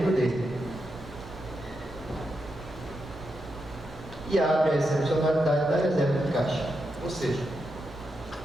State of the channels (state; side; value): normal; both; correlation 0.85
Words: dele. E abre a excepcionalidade da reserva de caixa. Ou seja,